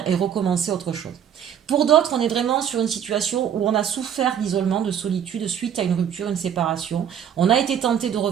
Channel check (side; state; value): left; quieter; 8.9 dB